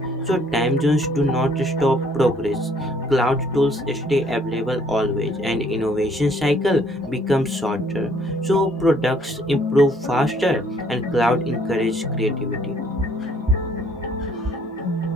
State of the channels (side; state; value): both; normal; correlation 0.62